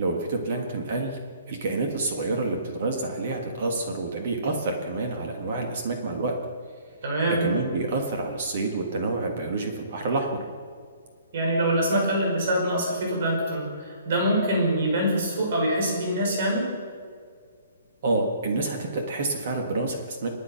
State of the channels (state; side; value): inverted; both; correlation -0.57